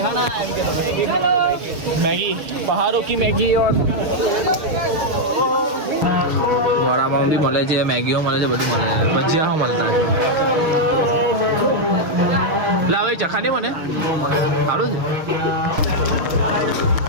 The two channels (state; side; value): late; left; 6.2 ms